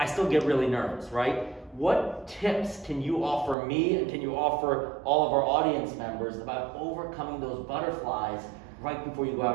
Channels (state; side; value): drops out; left; at 3.6 s